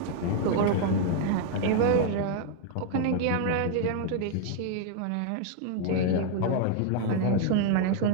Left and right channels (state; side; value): different; both; correlation 0.00